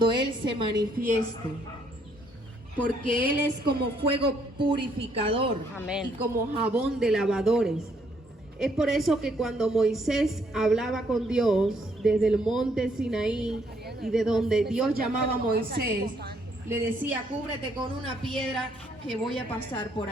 Él se manifieste? Porque Él es como fuego purificador. Amén. Y como jabón de lavadores. Es por eso que cuando Moisés hablaba con Dios desde el monte Sinaí, y de donde Dios llamaba a Moisés, le decía: cúbrete con una piedra que voy a pasar por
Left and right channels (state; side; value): normal; both; correlation 0.69